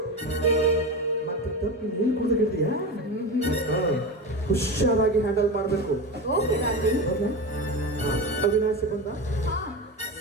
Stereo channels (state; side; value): normal; both; correlation 0.23